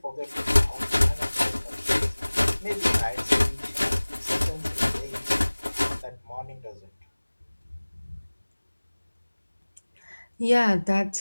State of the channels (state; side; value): inverted; both; correlation -1.00